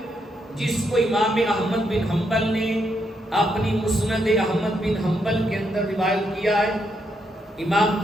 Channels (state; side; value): normal; both; correlation 0.78